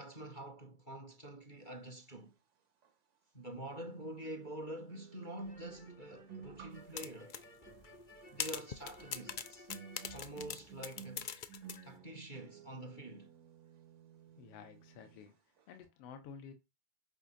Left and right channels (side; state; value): right; late; 2.3 ms